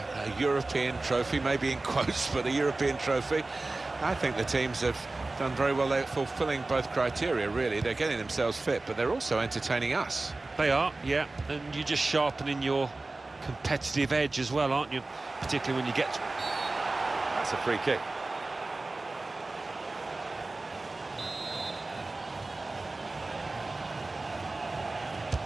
European trophy, maybe in quotes, but a European trophy. I think the teams have done very well. They're fulfilling both criteria, really. They're getting themselves fit, but they're also entertaining us. They are, yeah, and you're just sharpening your competitive edge as well, aren't you? Particularly when you get... That's a free kick.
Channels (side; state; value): left; quieter; 3.2 dB